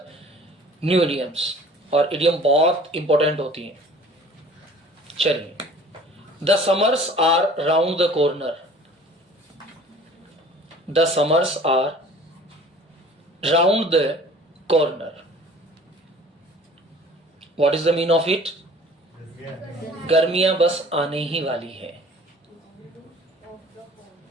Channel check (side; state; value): both; normal; correlation 0.48